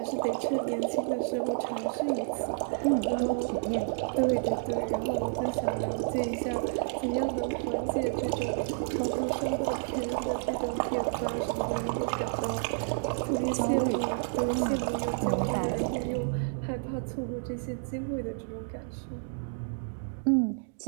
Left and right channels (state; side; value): silent; left; digital silence